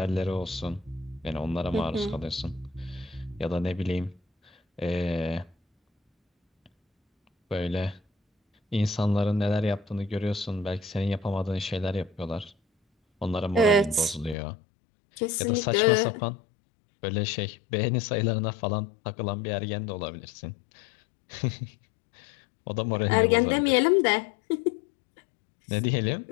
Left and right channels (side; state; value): right; drops out; at 14.4 s